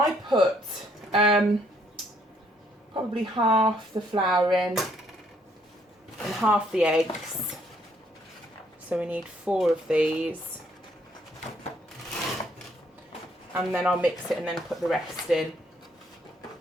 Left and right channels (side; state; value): both; normal; correlation 0.68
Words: put probably half the flour in and half the eggs. So we need 4 of these. And then I'll mix it and then put the rest in.